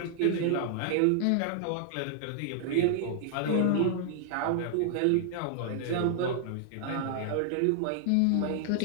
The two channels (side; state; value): both; different; correlation -0.01